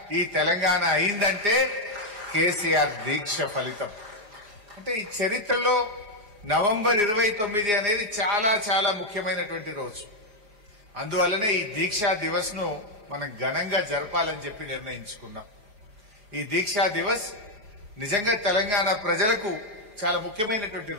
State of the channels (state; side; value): late; left; 4.8 ms